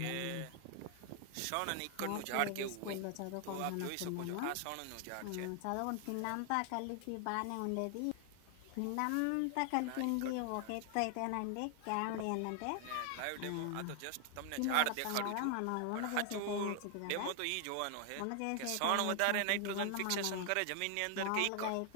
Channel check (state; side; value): different; both; correlation 0.00